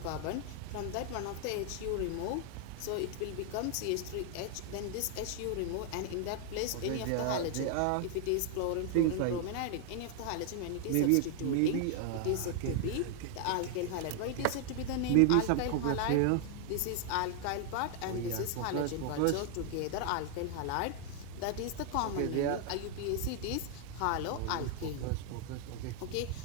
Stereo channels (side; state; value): both; different; correlation 0.00